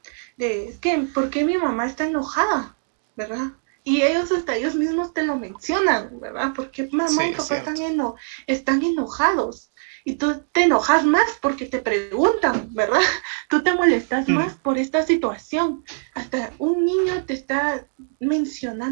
Es que, ¿por qué mi mamá está enojada? ¿Verdad? Y ellos hasta ellos mismos te lo mencionan, ¿verdad? Porque mamá Sí, y es papá cierto. están enojados. Y tú te enojas más porque te preguntan, ¿verdad? Tú te molestas más por esta situación. Hasta un niño te está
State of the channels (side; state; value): left; silent; digital silence